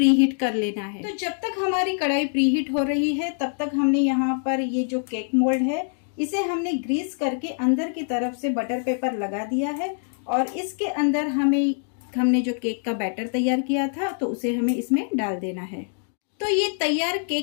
कर लेना है। तो जब तक हमारी कढ़ाई प्रीहीट हो रही है तब तक हमने यहाँ पर ये जो केक मोल्ड है इसे हमने ग्रीस करके अंदर की तरफ से बटर पेपर लगा दिया है और इसके अंदर हमने जो केक का बैटर तैयार किया था तो उसे हमें इसमें डाल देना है। तो ये तैयार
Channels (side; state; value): right; silent; 62 dB below the other